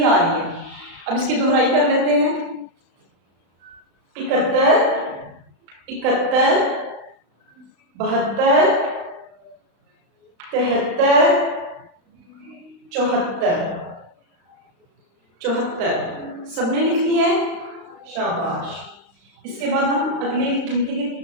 आ रही है। अब इसकी दोहराई कर लेते हैं। 71, 71, 72, 73, 74। 74 सबने लिख लिया है? शाबाश। इसके बाद हम अगली गिनती की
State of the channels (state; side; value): late; left; 35 ms